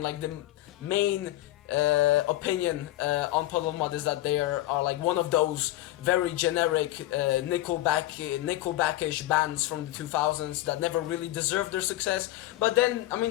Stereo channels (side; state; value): right; quieter; 15.8 dB